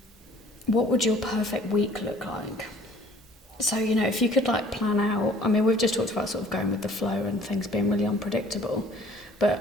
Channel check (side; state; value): both; normal; correlation 0.54